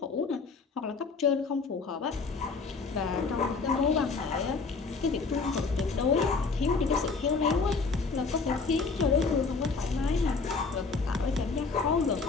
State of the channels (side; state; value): right; quieter; 4.5 dB